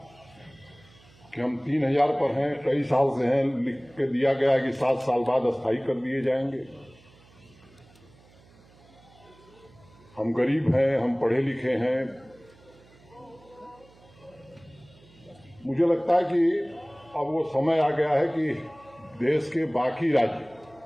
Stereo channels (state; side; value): noise; right; hum, 27 dB below the sound